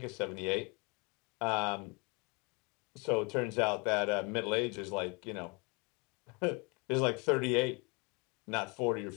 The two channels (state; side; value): quieter; right; 30.8 dB